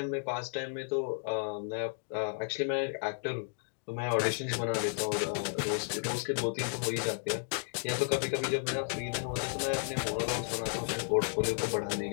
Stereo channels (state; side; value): silent; right; 56 dB below the other